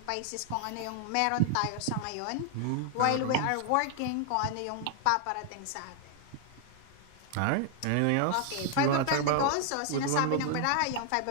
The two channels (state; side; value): different; both; correlation 0.00